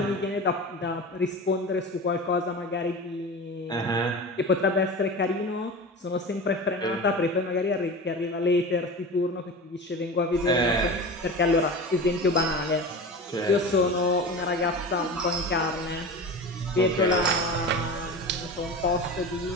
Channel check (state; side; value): normal; both; correlation 0.31